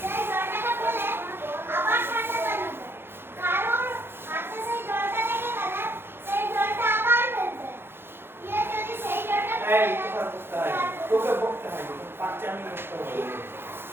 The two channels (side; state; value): left; late; 0.11 ms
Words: এই কথা বলতে হয়, তোকে বলতে হয়, পাঁচটা আমি করতে হবে।